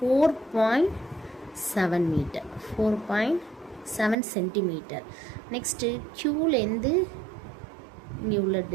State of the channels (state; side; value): drops out; left; at 4.2 s